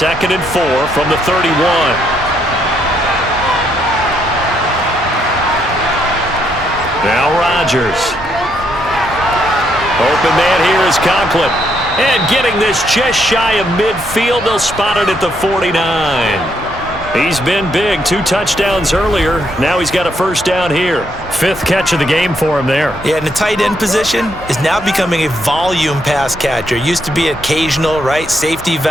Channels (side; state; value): both; normal; correlation 0.75